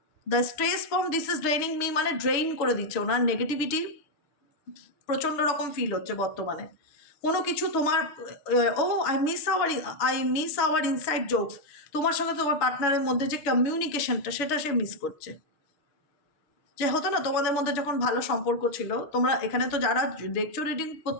The stress from this is ড্রেইনিং me মানে ড্রেইন করে দিচ্ছে। ওনার নেগেটিভিটি প্রচণ্ড রকম ফিল হচ্ছে বর্তমানে। কোনো কিছু তোমার I miss hour inside jokes, তোমার সঙ্গে তোমার পার্টনারের মধ্যে যে কমিউনিকেশনটা, সেটা সে মিস করছে। যে হতো না তোমাদের মধ্যে যখন ভালো সম্পর্ক ছিল, তোমরা এখানে তো যারা দেখছো রিডিং,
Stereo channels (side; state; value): right; late; 6.4 ms